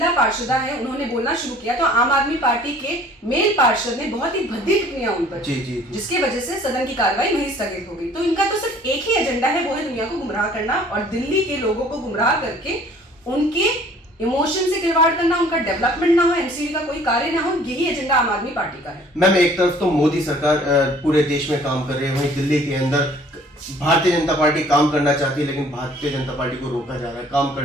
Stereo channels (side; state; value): both; normal; correlation 0.54